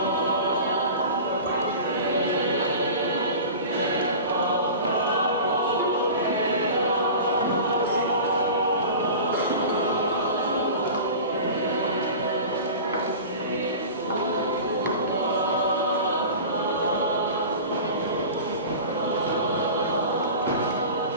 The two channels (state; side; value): inverted; both; correlation -0.35